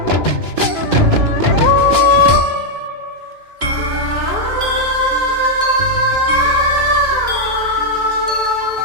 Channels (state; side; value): late; left; 2.9 ms